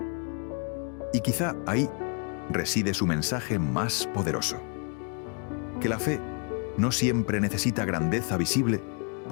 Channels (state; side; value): quieter; right; 38.3 dB